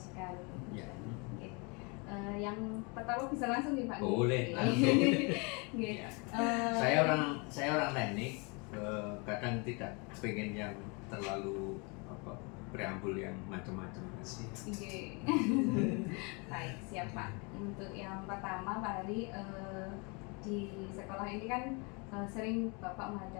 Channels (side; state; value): right; quieter; 31.3 dB